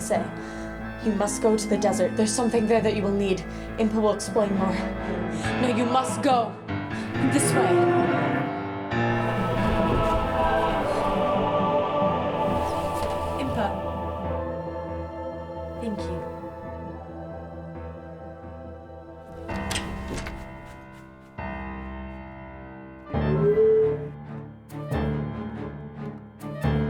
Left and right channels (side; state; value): both; identical; correlation 1.00